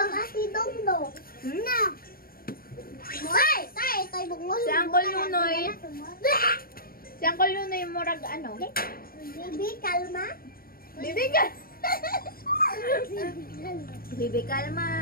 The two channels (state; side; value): late; right; 0.43 ms